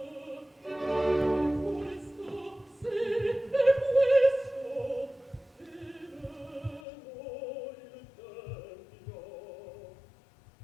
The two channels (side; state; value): right; drops out; at 6.8 s